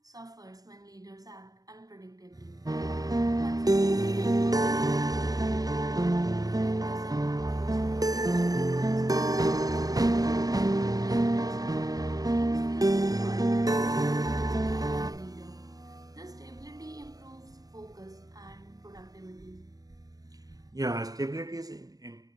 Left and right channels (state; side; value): late; left; 0.18 ms